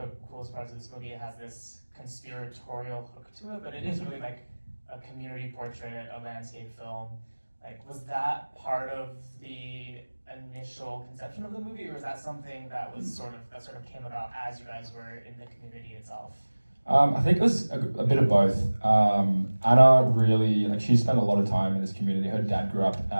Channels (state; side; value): inverted; both; correlation -1.00